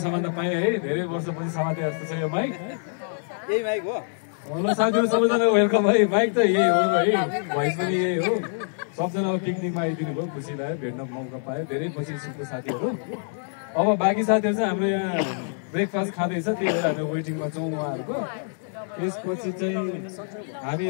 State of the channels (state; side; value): silent; right; 62 dB below the other